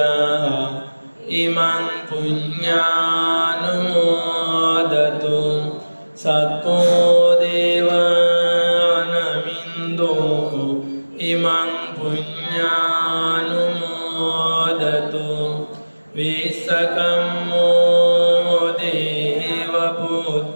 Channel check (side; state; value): both; inverted; correlation -1.00